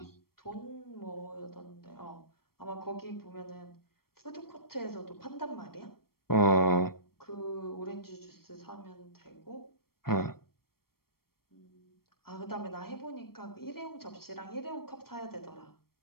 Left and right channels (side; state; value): right; late; 0.94 ms